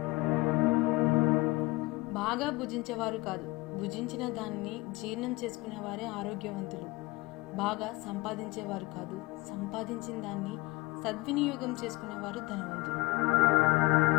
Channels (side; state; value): right; quieter; 22.4 dB